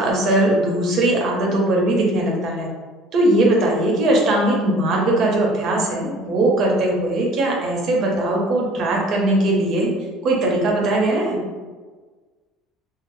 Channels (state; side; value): normal; both; correlation 0.50